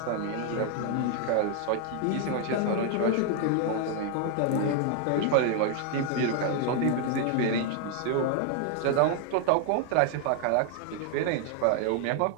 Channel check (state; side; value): different; both; correlation 0.00